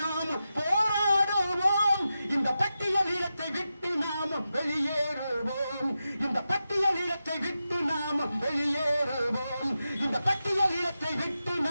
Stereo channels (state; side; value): inverted; both; correlation -0.90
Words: நாமும் போராடுவோம். இந்த பட்டியல் இனத்தை விட்டு நாமும் வெளியேறுவோம். இந்த பட்டியல் இனத்தை விட்டு நாமும் வெளியேறுவோம். இந்த பட்டியல் இனத்தை விட்டு